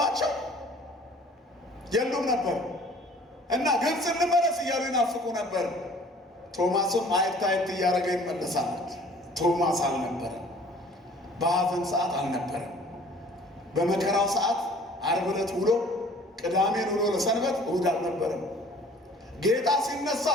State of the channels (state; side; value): normal; both; correlation 0.51